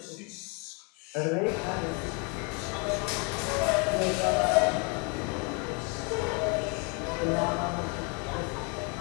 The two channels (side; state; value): right; quieter; 33.6 dB